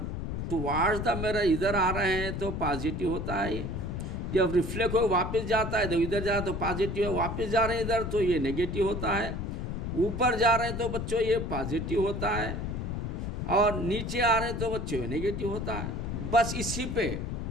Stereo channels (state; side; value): noise; left; rumble, 4 dB below the sound